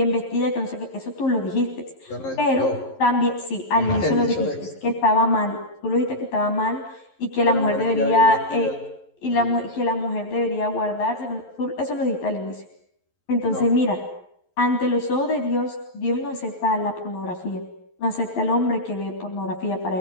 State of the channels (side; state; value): right; late; 11 ms